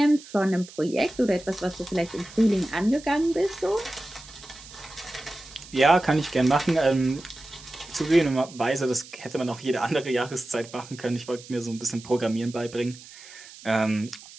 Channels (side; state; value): right; noise; hiss, 18 dB below the sound